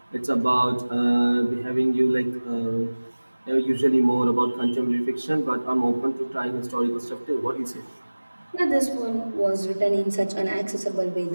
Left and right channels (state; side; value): inverted; both; correlation -1.00